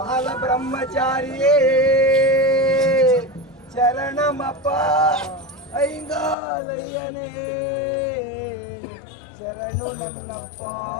ಬ್ರಹ್ಮಚಾರಿಯೇ ಶರಣಮಪ್ಪ ಐಂಗಾಲಯ್ಯನೇ ಶರಣು ನನ್ನಪ್ಪ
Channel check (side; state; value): right; drops out; at 6.4 s